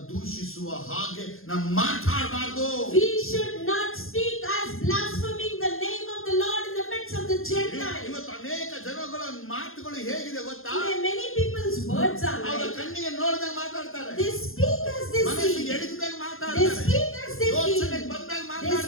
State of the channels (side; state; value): right; late; 0.61 ms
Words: ದೂಷಿಸುವ ಹಾಗೆ ನಾವು ಮಾತಾಡಬಾರ್ದು. We should not speak as blaspheming the name of the Lord in the midst of the Gentiles. ಇವತ್ತು ಅನೇಕ ಜನಗಳ ಮಾತುಗಳು ಹೇಗಿದೆ ಗೊತ್ತಾ? Today many people's words are ಅವರ like, ಕಣ್ಣಿಗೆ ನೋಡಿದಾಗ ಮಾತಾಡ್ತಾರೆ, they speak as they ಮನಸ್ಸಿಗೆ see. ಎಡಗಿದಾಗ They ಮಾತಾಡ್ತಾರೆ, speak as they ಯೋಚನೆಗೆ feel. ಬಂದಾಗ They